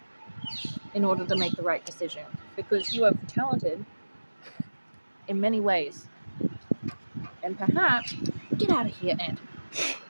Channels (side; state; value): both; inverted; correlation -1.00